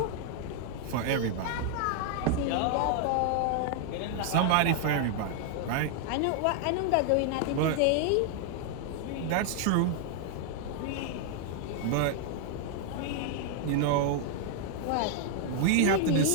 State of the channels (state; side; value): different; both; correlation 0.00